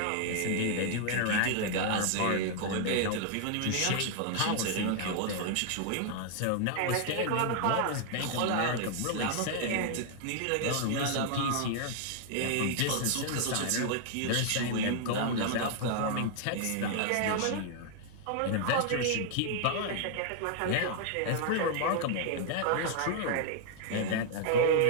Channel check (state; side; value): different; both; correlation -0.01